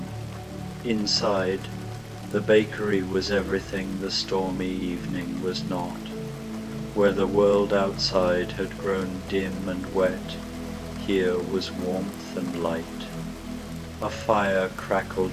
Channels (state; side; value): identical; both; correlation 1.00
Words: Inside, the bakery was everything the stormy evening was not. Where the world outside had grown dim and wet, here was warmth and light. A fire